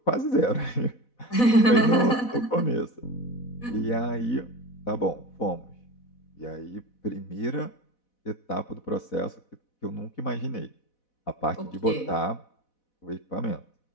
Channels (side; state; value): right; late; 4.1 ms